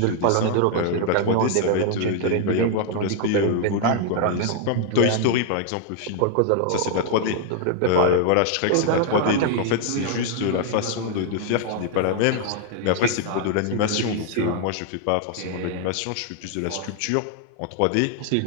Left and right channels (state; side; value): different; both; correlation 0.00